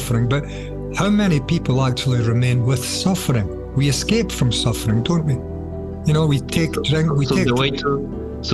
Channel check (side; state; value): both; identical; correlation 1.00